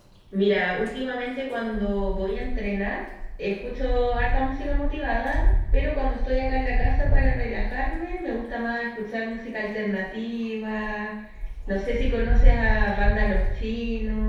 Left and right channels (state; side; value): identical; both; correlation 1.00